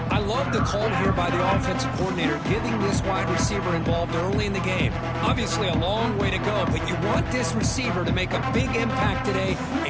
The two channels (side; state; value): both; identical; correlation 1.00